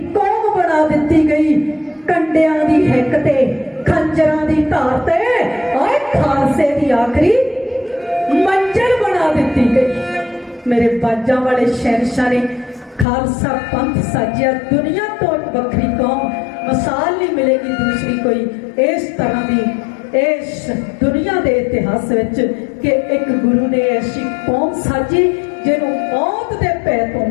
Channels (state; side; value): drops out; right; at 13.1 s